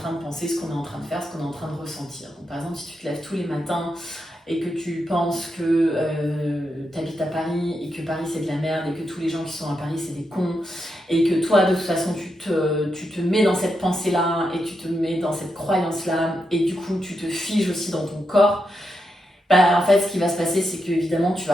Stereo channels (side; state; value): both; normal; correlation 0.85